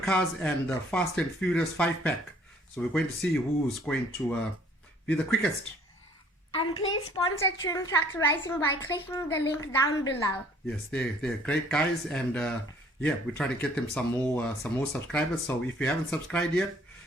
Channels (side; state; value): both; normal; correlation 0.58